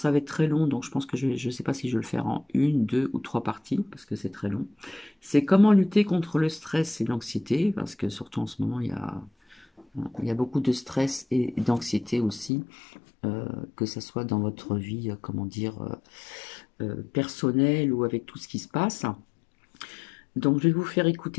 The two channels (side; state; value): right; drops out; at 12.5 s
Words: va être très long, donc je pense que je ne sais pas si je vais le faire en une, deux ou trois parties parce que c'est très long. C'est comment lutter contre le stress et l'anxiété, parce que surtout en ce moment, il y a beaucoup de stress et d'anxiété aussi, que ce soit dans votre vie, comment dire, personnelle ou avec tout ce qui se passe. Donc, je vais vous faire